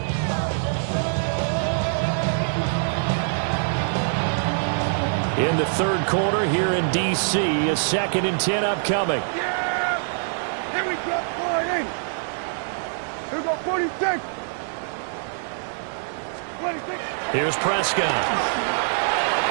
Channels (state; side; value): silent; left; digital silence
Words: In the third quarter here in D.C., a second and 10 upcoming. Yeah! Here we go, 40. Here we go, 46. 26. Here's Prescott.